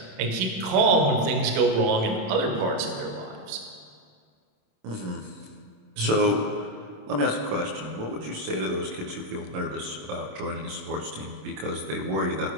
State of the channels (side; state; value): left; late; 27 ms